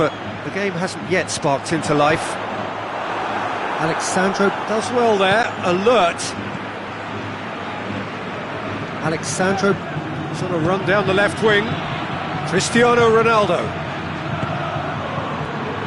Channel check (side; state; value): both; identical; correlation 1.00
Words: the game hasn't yet sparked into life. Alexandro does well there, alert. Alexandro sort of run down the left wing. Cristiano Ronaldo.